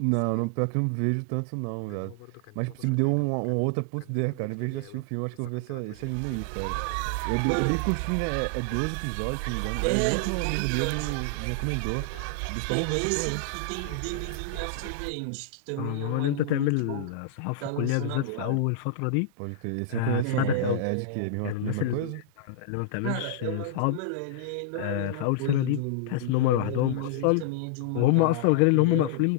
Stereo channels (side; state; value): both; different; correlation -0.01